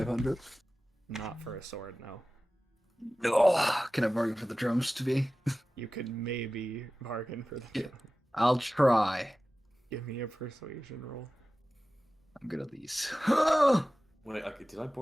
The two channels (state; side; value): normal; both; correlation 0.96